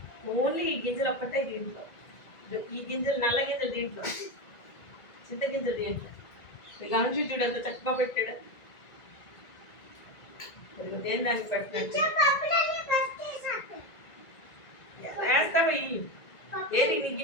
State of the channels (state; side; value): late; right; 1.9 ms